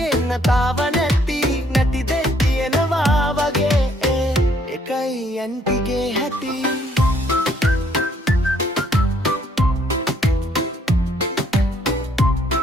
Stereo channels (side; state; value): both; normal; correlation 0.66